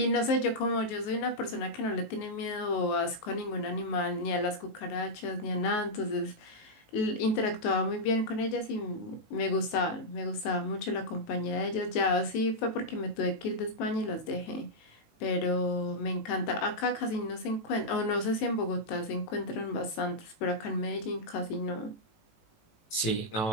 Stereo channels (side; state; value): right; late; 18 ms